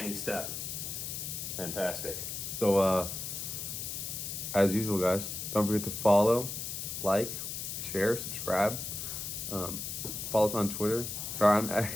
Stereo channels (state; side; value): noise; left; hiss, 5 dB below the sound